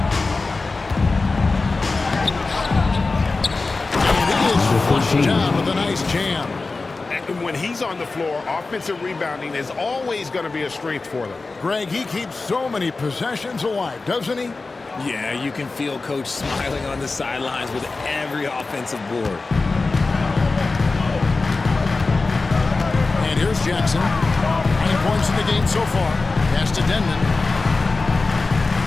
And he is flushed down with a nice jam. And when he's on the floor, offensive rebounding is always going to be a strength for them. Greg, he keeps so many possessions alive, doesn't he? Yeah, you can feel Coach smiling on the sidelines with every offensive board. And here's Jackson. 9 points in the game so far. Pass to Denman.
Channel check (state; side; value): quieter; right; 3.7 dB